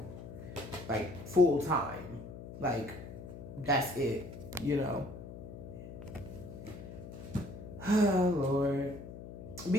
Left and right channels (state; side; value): noise; left; hum, 12 dB below the sound